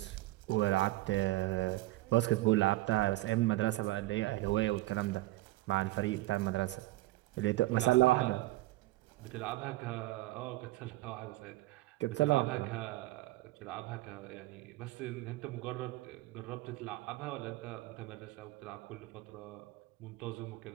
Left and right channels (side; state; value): left; quieter; 18.2 dB